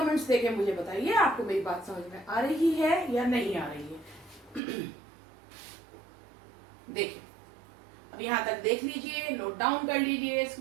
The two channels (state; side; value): drops out; left; at 4.6 s